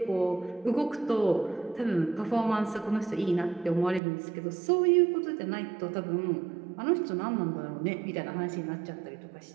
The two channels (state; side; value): drops out; left; at 4.0 s